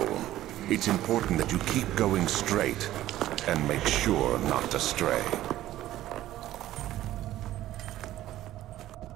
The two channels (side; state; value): left; quieter; 14.2 dB